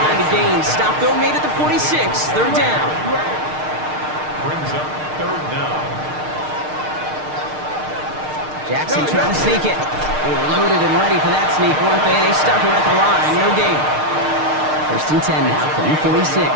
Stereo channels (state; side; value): late; left; 6.6 ms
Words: to gain. Stop though made at the 46. 3rd down. Brings up 3rd down. Jackson trying to sneak it. They were loaded and ready for that sneak, weren't they? They stopped him at the line. No gain. 1st and 10 now from the